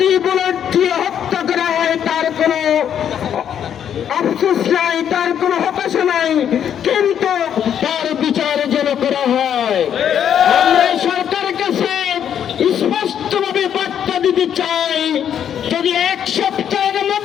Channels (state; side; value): quieter; right; 9.1 dB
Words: বুলেট দিয়ে হত্যা করা হয় তার কোনো আফসোস নাই, তার কোনো হতাশা নাই, কিন্তু তার বিচার যেন করা হয়। আমরা সরকারের কাছে স্পষ্টভাবে বার্তা দিতে চাই, যদি এক সপ্তাহের